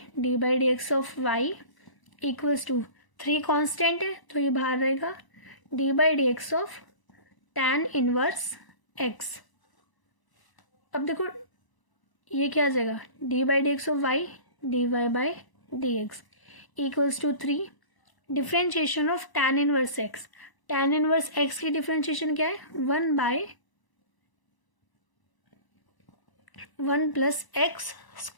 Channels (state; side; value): late; right; 1.0 ms